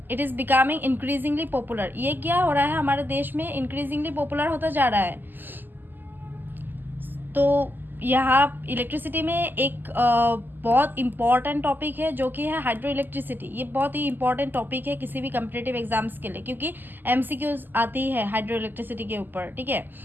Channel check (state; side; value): late; left; 0.090 ms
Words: it is becoming increasingly popular. ये क्या हो रहा है हमारे देश में? इंक्रीजिंगली पॉपुलर होता जा रहा है। तो यहाँ इलेक्ट्रिसिटी में एक बहुत इम्पॉर्टेंट टॉपिक है जो कि है हाइड्रो इलेक्ट्रिसिटी। ये बहुत ही इंपॉर्टेंट टॉपिक है किसी भी कम्पिटिटिव एग्जाम्स के लिए, क्योंकि एमसीक्यूज आती है हाइड्रो इलेक्ट्रिसिटी के ऊपर, ठीक है।